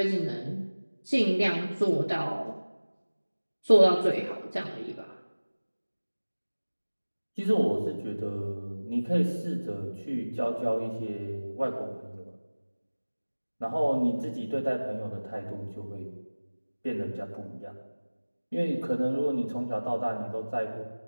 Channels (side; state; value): both; inverted; correlation -1.00